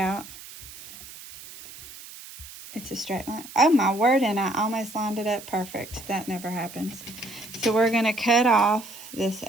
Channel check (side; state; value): right; noise; hiss, 16 dB below the sound